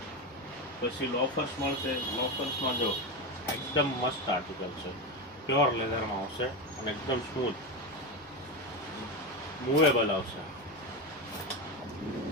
પછી લોફર્સ મળશે. લોફર્સમાં જો એકદમ મસ્ત આર્ટિકલ છે, પ્યોર લેધરમાં આવશે અને એકદમ સ્મૂથ મૂવેબલ આવશે,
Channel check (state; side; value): normal; both; correlation 0.16